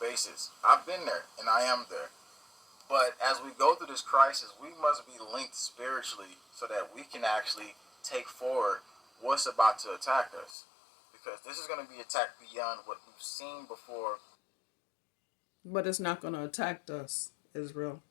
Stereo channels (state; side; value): drops out; right; at 10.6 s